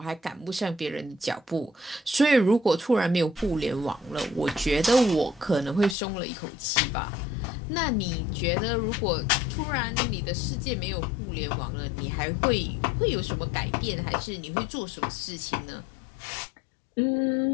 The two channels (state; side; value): drops out; right; at 6.0 s